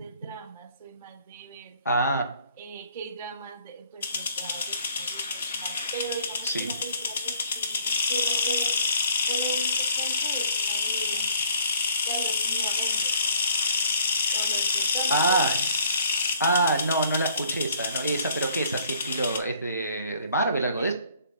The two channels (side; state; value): both; inverted; correlation -0.59